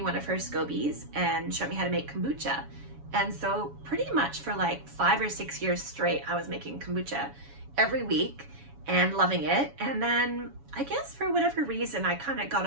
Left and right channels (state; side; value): late; left; 7.1 ms